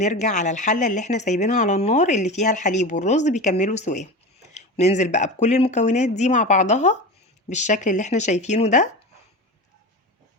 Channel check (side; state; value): both; normal; correlation 0.27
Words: على الحله اللي احنا سايبينها على النار اللي فيها الحليب والرز بيكملوا سواها. ننزل بقى بكل المكونات دي مع بعضها بالشكل اللي احنا شايفينه ده،